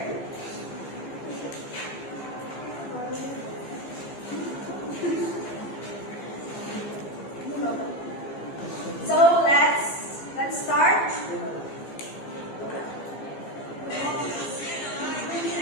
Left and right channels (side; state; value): right; late; 15 ms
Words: So let's start.